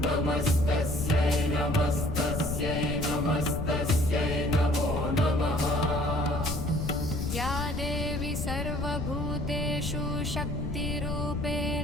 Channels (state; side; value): noise; left; rumble, 3 dB below the sound